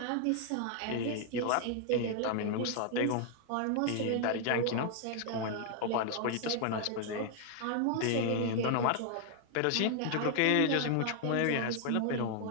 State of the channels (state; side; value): different; both; correlation 0.00